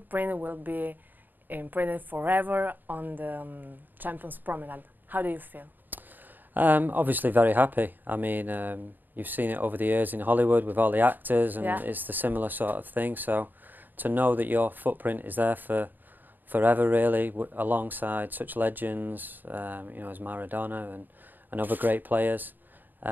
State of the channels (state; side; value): late; left; 0.089 ms